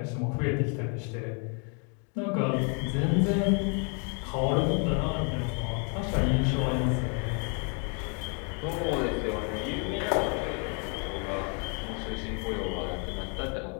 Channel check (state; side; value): quieter; right; 38.0 dB